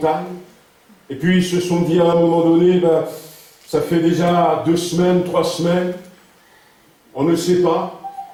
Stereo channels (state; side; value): identical; both; correlation 1.00